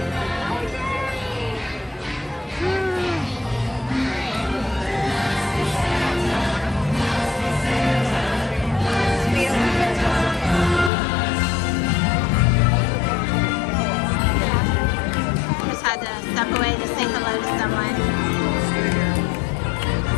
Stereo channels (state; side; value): drops out; right; at 10.9 s